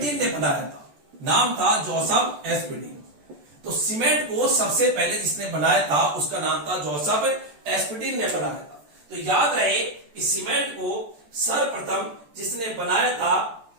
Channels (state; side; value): late; left; 14 ms